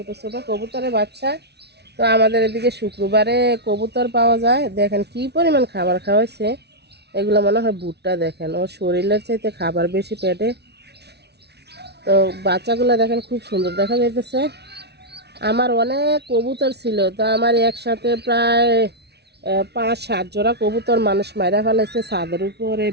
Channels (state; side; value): late; left; 0.49 ms